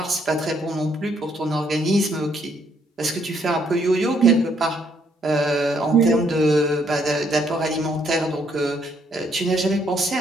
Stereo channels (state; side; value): normal; both; correlation 0.69